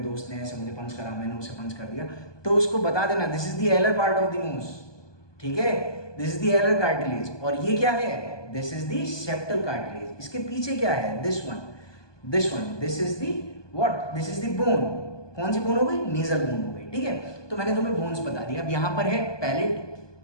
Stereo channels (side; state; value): right; late; 1.2 ms